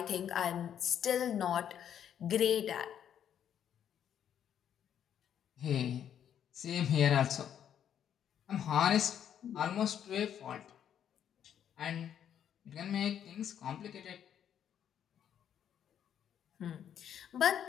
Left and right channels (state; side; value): quieter; right; 9.4 dB